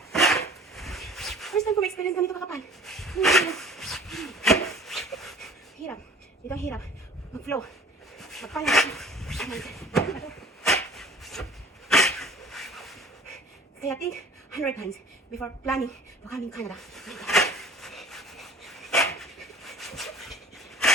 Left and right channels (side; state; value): both; normal; correlation 0.47